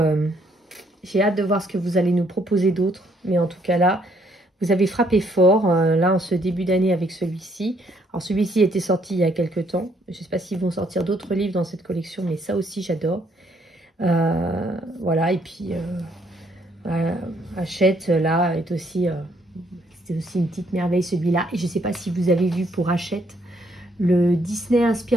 j'ai hâte de voir ce que vous allez nous proposer d'autre. Mais en tout cas, là, vous avez frappé fort, là, en ce début d'année avec celui-ci. Alors, celui-ci était sorti il y a quelques temps. Je ne sais pas s'ils vont sortir d'autres livres dans cette collection, mais ça aussi, j'adore. Voilà, et puis Hachette là est aussi c'est aussi une petite merveille celui-là. Et je sais pas si vous avez vu pour Hachette le Disney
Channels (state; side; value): normal; both; correlation 0.69